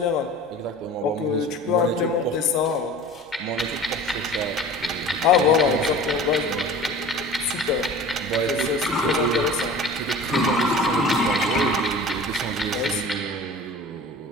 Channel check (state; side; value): normal; both; correlation 0.40